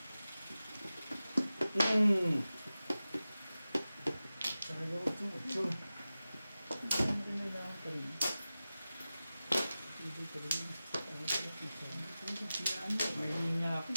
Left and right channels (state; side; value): inverted; both; correlation -0.95